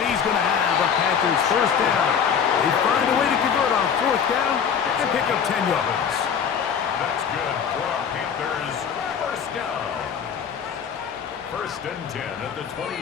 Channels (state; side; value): quieter; right; 7.3 dB